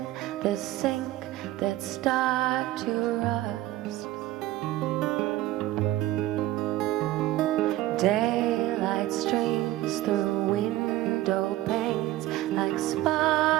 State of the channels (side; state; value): left; quieter; 16.0 dB